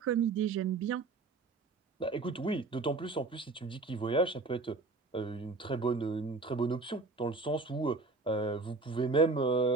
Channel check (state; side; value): quieter; left; 3.8 dB